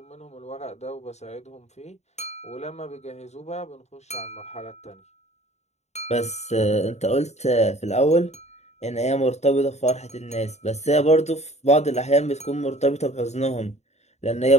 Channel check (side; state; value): right; late; 0.32 ms